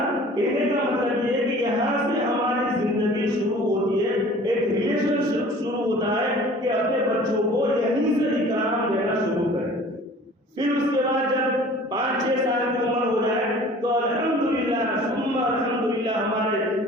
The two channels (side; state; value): both; normal; correlation 0.47